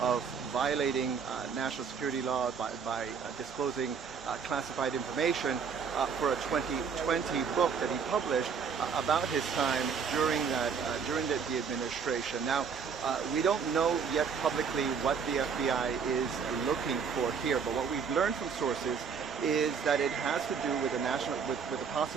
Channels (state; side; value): quieter; left; 6.3 dB